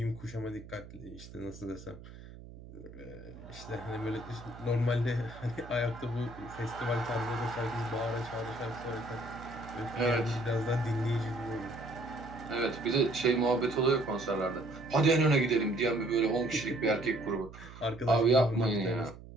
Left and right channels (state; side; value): noise; right; hum, 16 dB below the sound